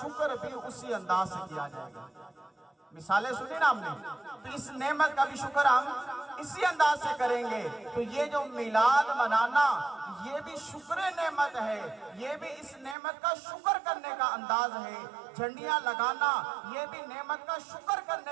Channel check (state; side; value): drops out; left; at 13.0 s